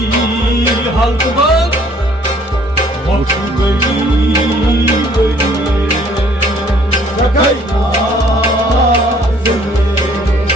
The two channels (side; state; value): both; normal; correlation 0.59